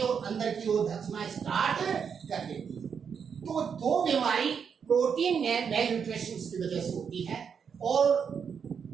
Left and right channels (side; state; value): left; quieter; 6.8 dB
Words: और अंदर की ओर धंसना स्टार्ट कर देती है। तो दो बीमारी प्रोटीन में मेल न्यूट्रिशन की वजह से होती है। और